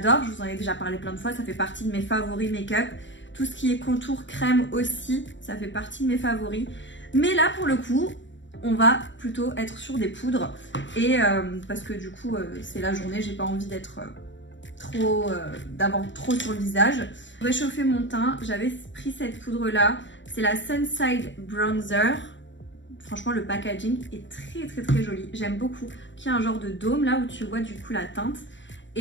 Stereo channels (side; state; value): right; late; 0.54 ms